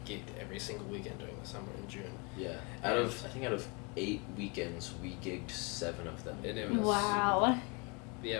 gigged every single weekend during the summer in June. Yeah, out of 8 weekends we gigged 7 of them. And it was Wow. Yeah,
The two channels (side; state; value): right; quieter; 31.3 dB